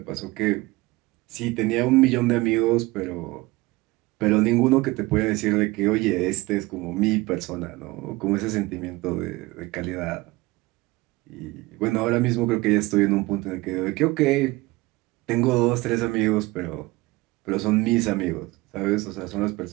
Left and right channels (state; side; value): quieter; left; 21.3 dB